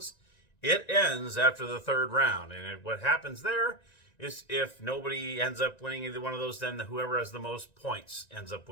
it ends after the 3rd round. And what happens there is if nobody ends up winning either one of those, then whoever has the most points ends up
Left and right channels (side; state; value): right; late; 1.9 ms